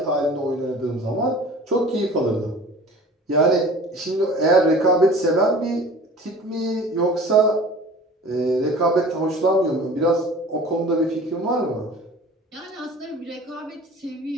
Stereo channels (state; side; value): normal; both; correlation 0.43